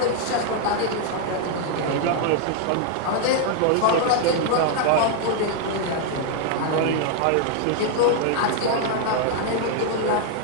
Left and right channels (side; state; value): both; different; correlation 0.00